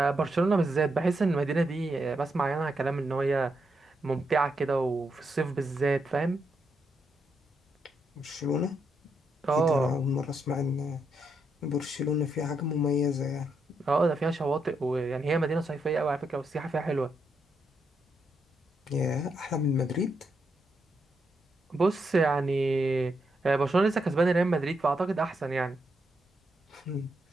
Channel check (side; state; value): both; normal; correlation 0.81